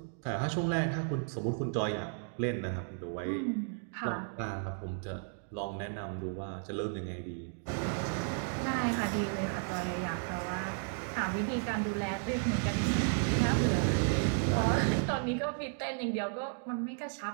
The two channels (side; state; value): left; silent; 55 dB below the other